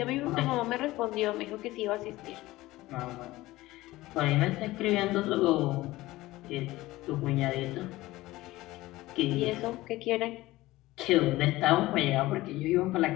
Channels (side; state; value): right; quieter; 18.0 dB